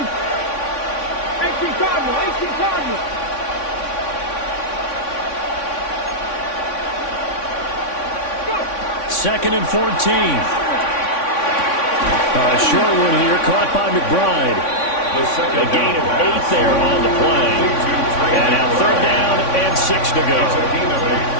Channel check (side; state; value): right; late; 3.5 ms